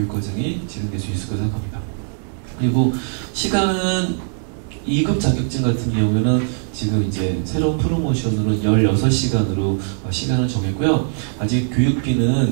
진행될 수 있을 거라 생각합니다. 그리고 시간은 2급 자격증 같은 경우에는 지금 이제 새로운 프로모션으로 16시간으로 시간을 정했고요. 아직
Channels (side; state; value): left; silent; digital silence